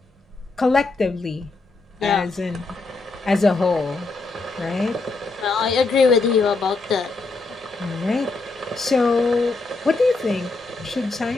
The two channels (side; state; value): right; quieter; 3.6 dB